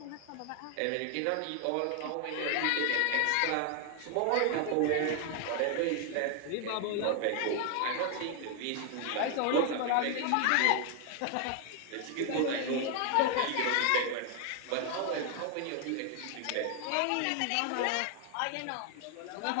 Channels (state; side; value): different; both; correlation 0.00